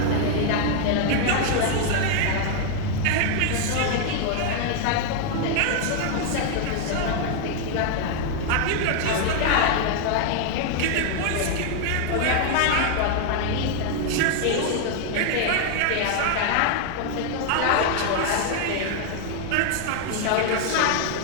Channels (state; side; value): different; both; correlation 0.00